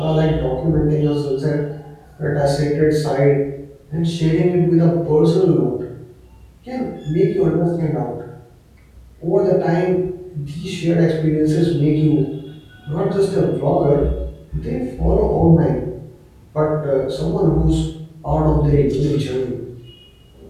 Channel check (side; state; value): both; identical; correlation 1.00